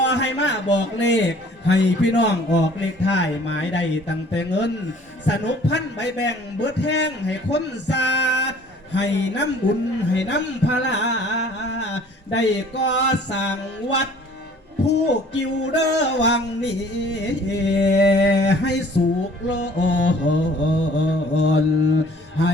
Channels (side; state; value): both; normal; correlation 0.53